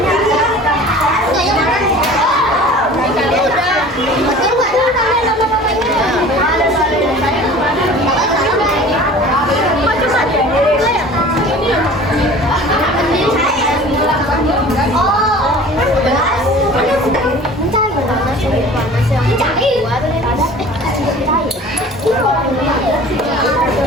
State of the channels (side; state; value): both; normal; correlation 0.43